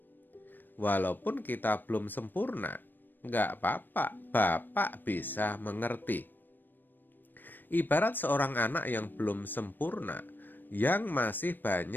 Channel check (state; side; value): late; right; 0.092 ms